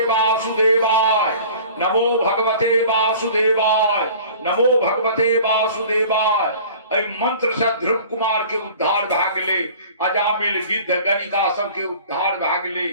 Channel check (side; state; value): both; inverted; correlation -0.45